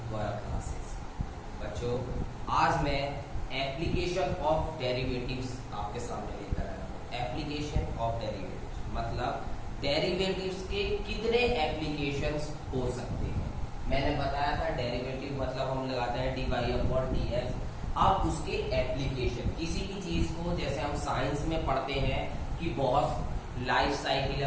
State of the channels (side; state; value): both; identical; correlation 1.00